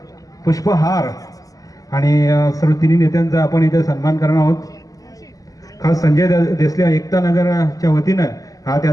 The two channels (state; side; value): late; right; 0.17 ms